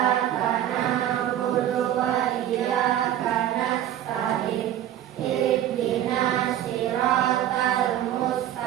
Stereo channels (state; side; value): quieter; left; 11.7 dB